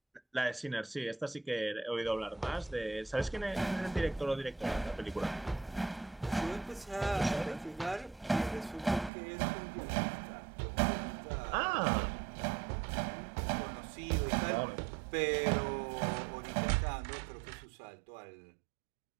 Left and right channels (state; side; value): drops out; left; at 9.1 s